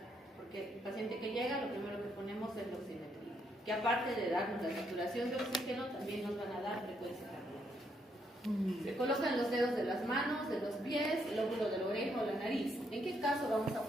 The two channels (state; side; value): normal; both; correlation 0.75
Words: Porque el paciente que llega, lo primero que ponemos es la oximetría, que aparte de darnos la saturación de oxígeno, también nos van a dar frecuencia cardíaca. Se colocan los dedos de las manos, de los pies, el óvulo de la oreja o la nariz. ¿En qué caso vamos a